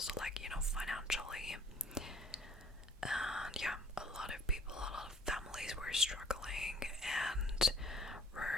like, you know, financially. And yeah, a lot of people, a lot of families were struggling and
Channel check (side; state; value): both; normal; correlation 0.56